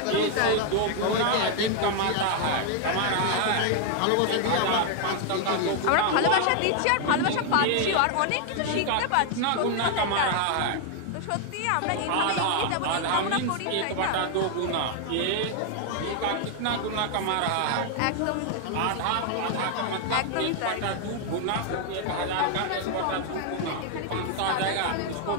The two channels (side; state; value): both; different; correlation 0.00